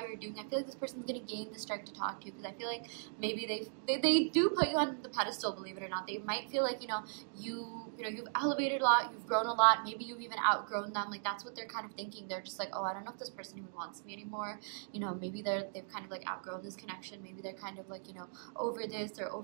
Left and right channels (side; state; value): left; silent; digital silence